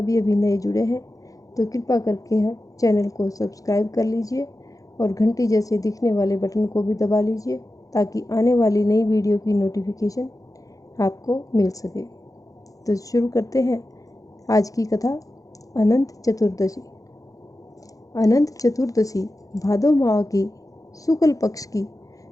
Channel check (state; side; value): late; right; 0.17 ms